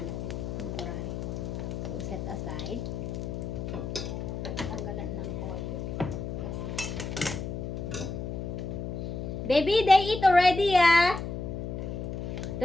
natin. Temporary. So, set aside. Tanggalan ng oil. Baby, they eat already, ah.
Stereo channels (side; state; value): left; noise; hum, 5 dB below the sound